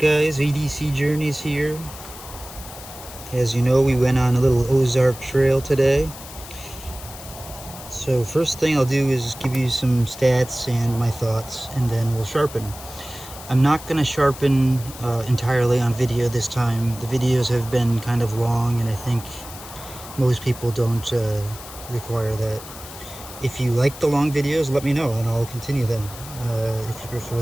EDC Journeys here. As you know, we went on a little Ozark Trail today. So first thing I'll do is give you some stats and my thoughts, and then we'll sharpen. I'm not going to sharpen entirely on video this time. The videos have been kind of long, and I think most people don't require that. If you like the long videos, let me know and I'll continue them. If you prefer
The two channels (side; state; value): left; noise; hiss, 15 dB below the sound